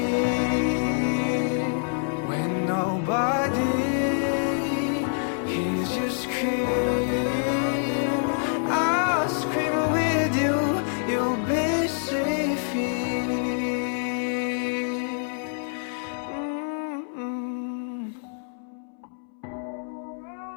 When nobody hears you scream, I'll scream with you, you'll be safe here.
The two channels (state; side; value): silent; right; 61 dB below the other